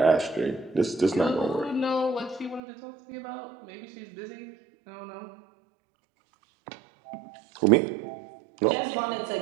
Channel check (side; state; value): left; drops out; at 2.6 s